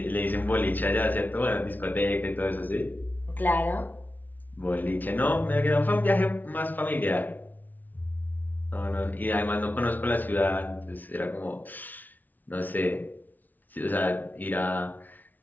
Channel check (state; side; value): late; right; 0.083 ms